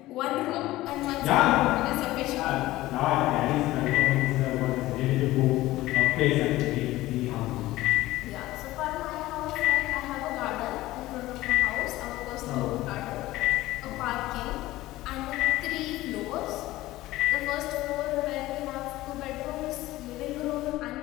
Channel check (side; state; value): right; quieter; 17.1 dB